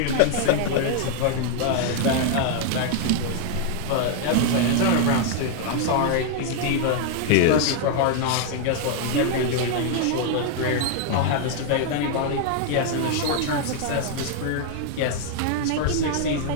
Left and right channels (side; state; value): both; different; correlation 0.00